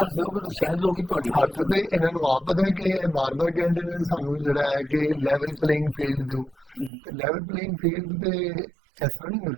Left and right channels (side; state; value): left; drops out; at 6.9 s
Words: ਦਿਓ ਫਿਰ ਸ਼ਾਇਦ ਲੋਕ ਹੀ ਤੁਹਾਡੀ ਗੱਲ ਹੱਥ ਤੇ ਇਹਨਾਂ ਨੂੰ ਆਪ ਪਤਾ ਹੈ ਕਿ ਇਹ ਬਾਰ-ਬਾਰ ਕਹਿੰਦੇ ਨੇ ਸਾਨੂੰ ਜਿਹੜਾ ਹੈ ਕਿ ਲੈਵਲ ਪਲੇਇੰਗ ਫੀਲਡ ਦਿਓ, ਤੇ ਲੈਵਲ ਪਲੇਇੰਗ ਫੀਲਡ ਤੇ ਇਸ ਤਰ੍ਹਾਂ ਨਹੀਂ